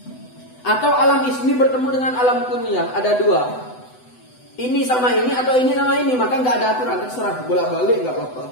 Atau alam ismi bertemu dengan alam kunyah, ada dua. Ini sama ini atau ini sama ini, maka nggak ada aturan, terserah bolak-balik nggak apa-apa.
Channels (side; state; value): right; late; 8.0 ms